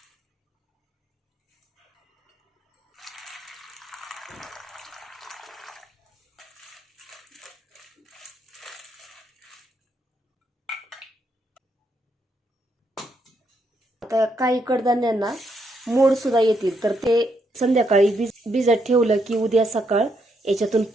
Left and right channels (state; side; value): normal; both; correlation 0.77